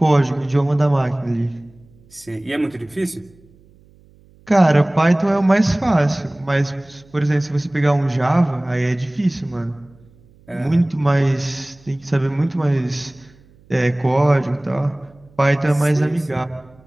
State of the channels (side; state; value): right; noise; hum, 29 dB below the sound